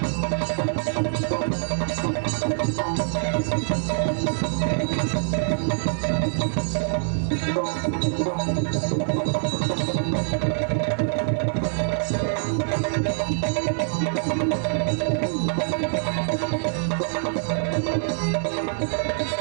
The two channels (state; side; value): silent; left; 60 dB below the other